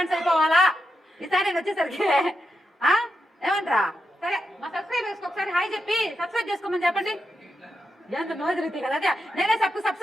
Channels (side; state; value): both; normal; correlation 0.86